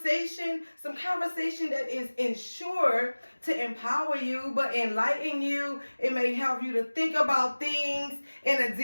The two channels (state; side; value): inverted; both; correlation -1.00